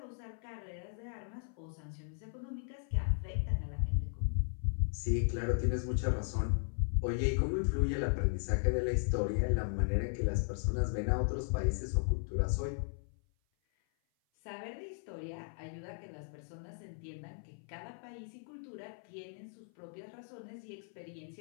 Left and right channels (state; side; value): silent; right; 53 dB below the other